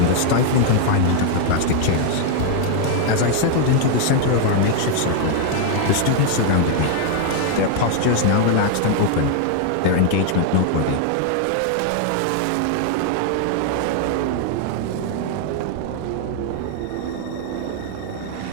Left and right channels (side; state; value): both; different; correlation 0.00